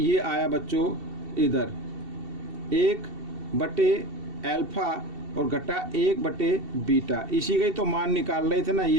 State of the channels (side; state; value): left; late; 2.7 ms